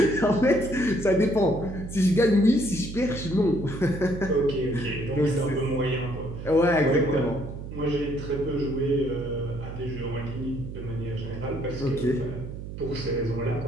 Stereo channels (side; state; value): right; noise; hum, 9 dB below the sound